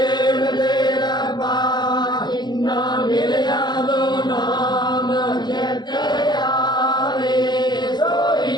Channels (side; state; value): right; late; 0.21 ms